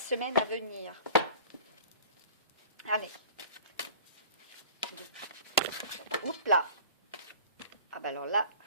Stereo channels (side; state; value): both; inverted; correlation -0.44